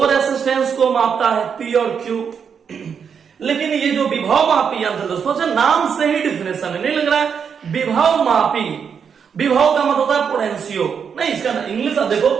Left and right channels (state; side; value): quieter; left; 6.9 dB